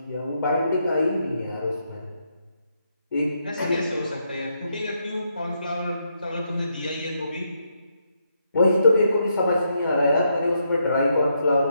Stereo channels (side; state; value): both; inverted; correlation -0.79